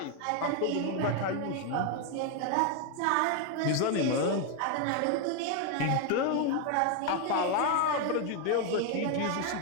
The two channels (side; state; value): both; different; correlation 0.01